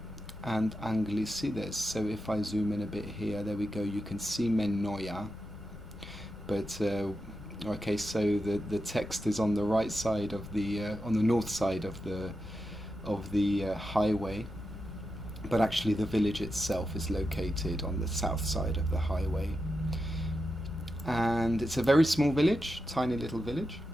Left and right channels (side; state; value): both; normal; correlation 0.88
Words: and Anglicides. So if I zoom in a bit here, there we go, you can see Menogeia, but okay, so the text is on the right side of the on the north side of the highway, but actually the village itself is located on the south side of the highway. And it's a very small village, tiny little village.